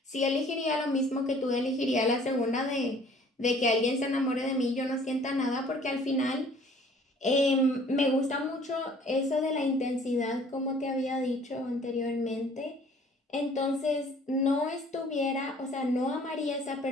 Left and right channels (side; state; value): both; normal; correlation 0.54